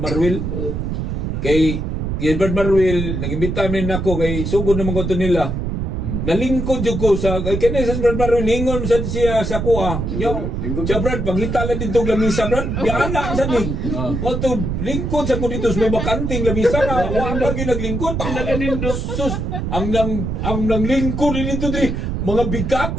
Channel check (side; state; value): right; noise; rumble, 2 dB below the sound